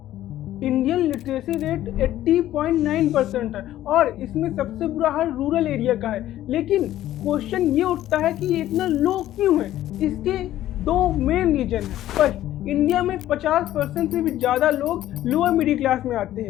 Indian literacy rate 80.9% है और इसमें सबसे बुरा हाल रूरल एरिया का है। लेकिन क्वेश्चन ये उठता है कि ये इतना लो क्यों है? इसके 2 मेन रीजन है। फर्स्ट, इंडिया में 50% से भी ज़्यादा लोग लोअर मिडिल क्लास में आते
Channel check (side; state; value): right; quieter; 13.5 dB